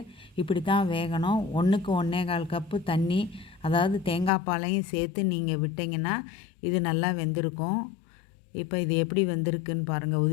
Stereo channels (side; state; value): right; drops out; at 4.3 s